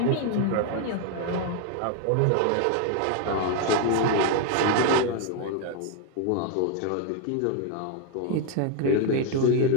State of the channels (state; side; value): different; both; correlation 0.01